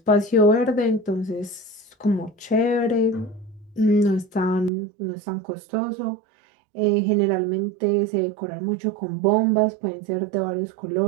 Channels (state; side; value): drops out; left; at 4.7 s